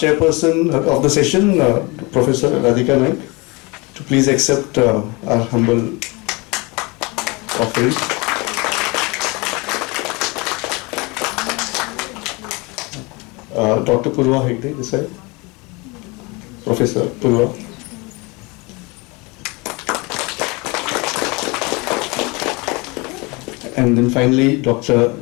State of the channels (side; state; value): right; quieter; 26.7 dB